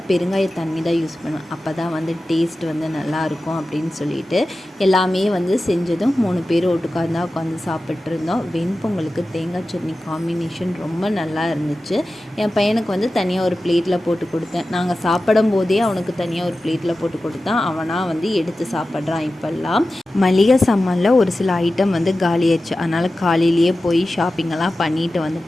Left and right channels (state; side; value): normal; both; correlation 0.94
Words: பெருங்காய தண்ணி தான் யூஸ் பண்ணுவேன். அப்போ தான் வந்து டேஸ்ட் வந்து நல்லாயிருக்கும் அப்படின்னு சொல்லிட்டு எல்லாமே வந்து செஞ்சதும் 3 பேர் ஒட்டுக்காந்தான் உட்காந்து சாப்பிட்ருந்தோம். வெண்பொங்கலுக்கு தேங்காய் சட்னி காம்பினேஷன் ரொம்ப நல்லா இருந்துச்சு. என் பையனுக்கு வந்து தனியாக ஒரு பிளேட்டில் போட்டு கொடுத்தேன். நாங்கள் சாப்பிடும் போதே அவனுக்கு தனியாக ஒரு பிளேட்டில் போட்டு கொடுத்தான். அவனாக வந்து எடுத்து சாப்பிட்றான். இப்போல்லாம் மளிகை சாமானில் ஒரு சில ஐட்டம் வந்து காலியாச்சு. அதனால் காலையிலேயே போய் ஷாப்பிங்கெல்லாம் பண்ணிட்டு